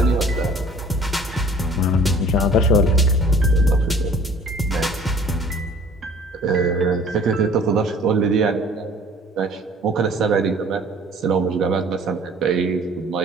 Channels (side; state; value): both; normal; correlation 0.51